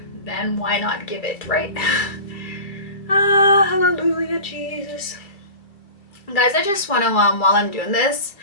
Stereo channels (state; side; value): late; right; 2.5 ms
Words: then why not give it, right? Ah, hallelujah, Jesus. Guys, I just want to, while I'm doing this